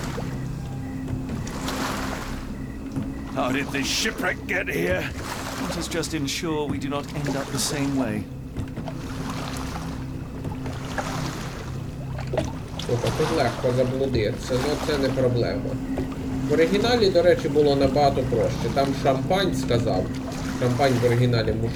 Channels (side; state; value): both; identical; correlation 1.00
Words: How did this shipwreck get here? Let us just ensure we do not end up the same way. Слухай, тут легко заблудитися, але це не проблема. В оригіналі, до речі, було набагато проще. Там шампань сказав. Шампань в оригіналі